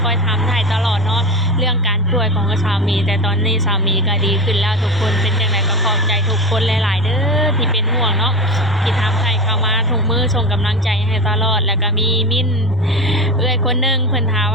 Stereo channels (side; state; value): both; normal; correlation 0.24